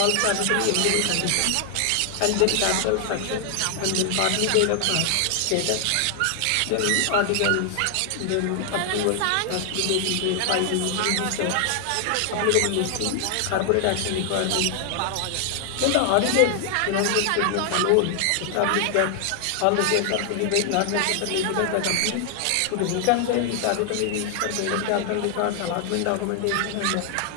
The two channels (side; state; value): both; different; correlation 0.00